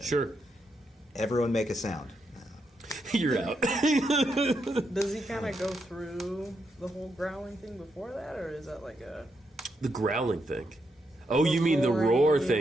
Sure, Everyone make a sound. you're out. Does he kind of go through the whole growling thing before that, or is that like a... The growling thing. Oh, you mean the roar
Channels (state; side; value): normal; both; correlation 0.81